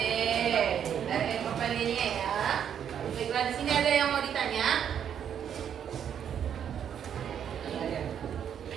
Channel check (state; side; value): quieter; left; 8.8 dB